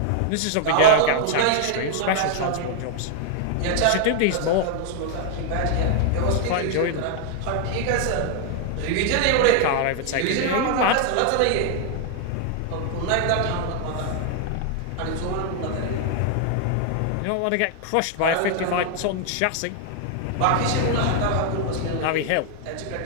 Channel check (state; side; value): different; both; correlation 0.00